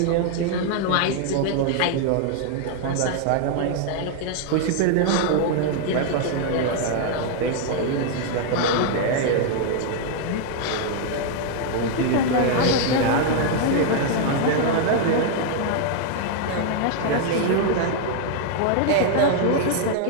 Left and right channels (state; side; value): different; both; correlation 0.00